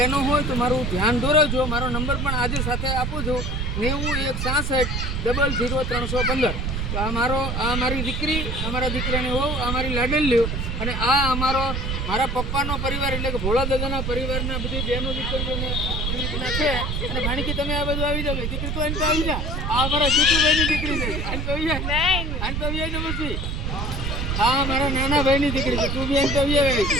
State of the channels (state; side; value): noise; right; rumble, 1 dB below the sound